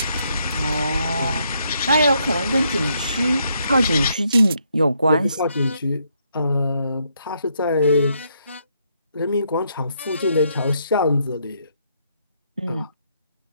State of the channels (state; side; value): inverted; both; correlation -0.75